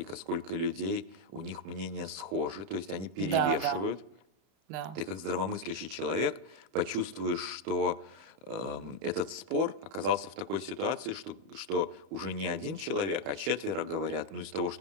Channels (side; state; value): left; late; 31 ms